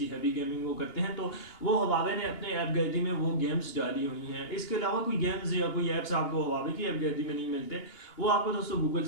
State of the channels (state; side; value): late; right; 2.8 ms